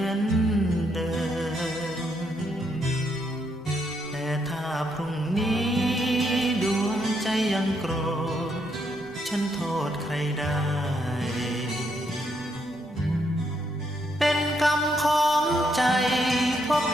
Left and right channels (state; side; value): normal; both; correlation 0.76